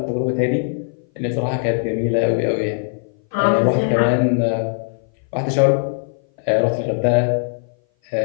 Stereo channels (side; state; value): right; silent; 58 dB below the other